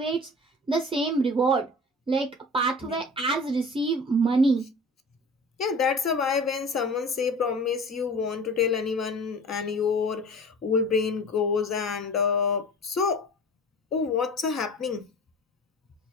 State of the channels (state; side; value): normal; both; correlation 0.39